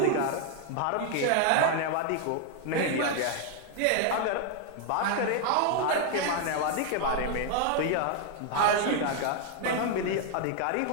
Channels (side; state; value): both; different; correlation 0.01